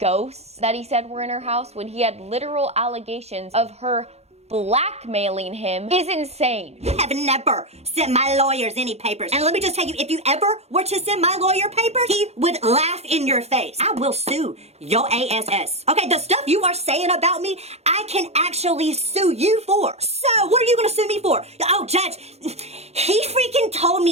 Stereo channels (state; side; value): late; left; 0.31 ms